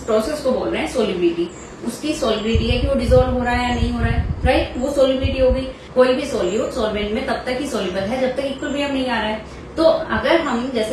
प्रोसेस को बोल रहे हैं सोल्युबिलिटी। उसकी सोल्युबिलिटी है कि वो डिसॉल्व हो रहा है या नहीं हो रहा है, राइट, वो सोल्युबिलिटी हो गई। कोई भी सोल्यूट सोलवेंट में तब तक ही सोल्यूबल है जब तक इक्विलिब्रियम नहीं आ रहा है। तो अगर हम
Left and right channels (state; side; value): identical; both; correlation 1.00